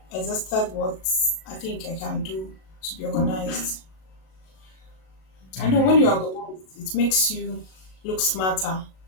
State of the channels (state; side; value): late; right; 37 ms